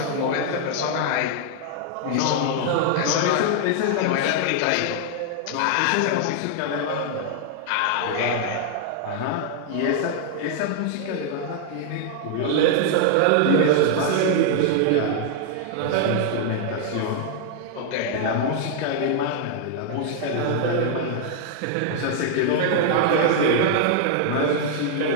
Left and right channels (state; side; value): different; both; correlation 0.00